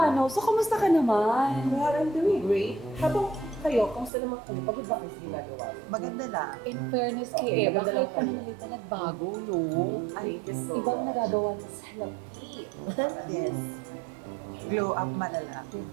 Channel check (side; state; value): left; drops out; at 4.1 s